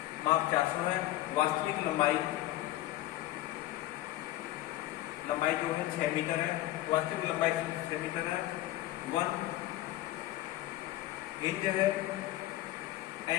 माप 400 है, वास्तविक लंबाई जो है 6 मीटर है, वास्तविक लंबाई 6 मीटर है। 1 इंच है,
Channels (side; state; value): right; quieter; 15.7 dB